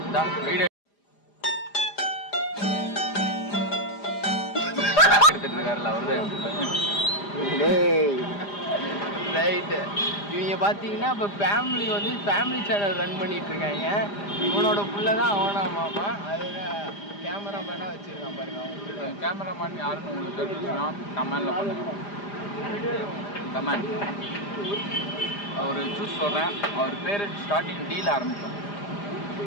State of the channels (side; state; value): right; late; 4.9 ms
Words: வீடியோ எடுத்துட்டு இருக்காருல்ல அவரு. ரைட்டு. இவங்க பார்த்தீங்கன்னா இப்போ ஃபேமிலி சேனல் ரன் பண்ணிட்டு இருக்காங்க. இவனோட புள்ள தான் அவனா மாமா. அதுதான் கேமராமேனாக வச்சுருக்கான் பாருங்க. அவங்க கேமராமேன் யாருன்னு உங்களுக்கு தெரிஞ்சுன்னா கமெண்டில் பண்ணுங்க. கமெண்ட் அவர் சூஸ் சொல்கிறேன். அவர் பேர் ஸ்டார்டிங் டீல் ஆரம்பிக்கும்.